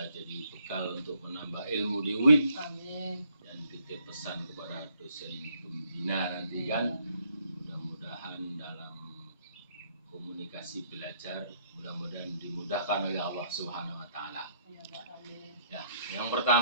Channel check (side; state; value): both; inverted; correlation -0.68